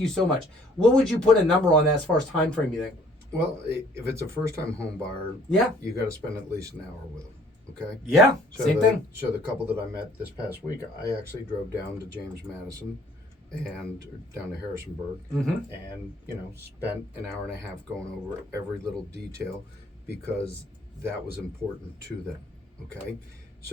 so much. What would you put a number on that as far as time frame, you think? Well, if it's a first-time home buyer, yeah, you got to spend at least an hour with them. Okay. Yeah. Same thing. So the couple that I met this past week, I actually drove down to James Madison and down to Harrisonburg, and spent an hour and a half going over every little detail, because that was important to them. Okay.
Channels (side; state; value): both; normal; correlation 0.58